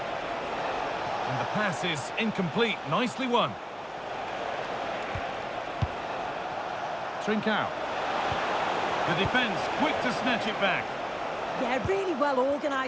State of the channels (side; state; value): both; identical; correlation 1.00